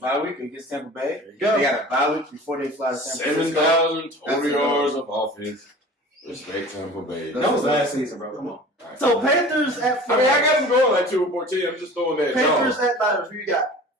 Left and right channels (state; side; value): normal; both; correlation 0.41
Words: week against Tampa Bay. They got a bye week before they fly to San Francisco. 7,000 total yards of offense. Respect Tampa Bay. That was last season, bro. Come on. So Panthers at 49ers. I mean, I got them going like 2-14. I'm just throwing that. Panthers at Niners. Who you got?